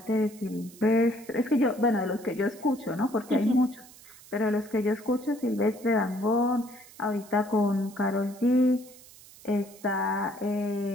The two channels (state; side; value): noise; right; hiss, 21 dB below the sound